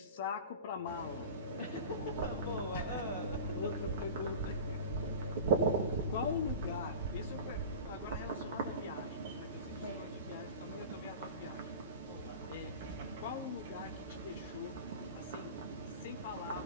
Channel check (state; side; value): inverted; both; correlation -0.34